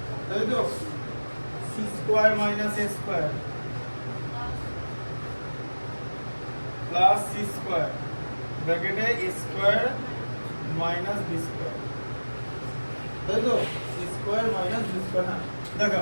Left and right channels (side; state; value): both; inverted; correlation -1.00